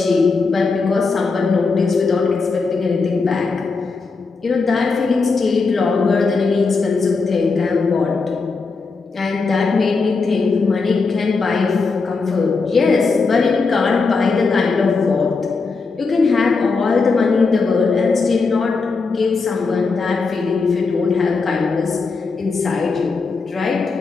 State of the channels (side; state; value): right; quieter; 4.4 dB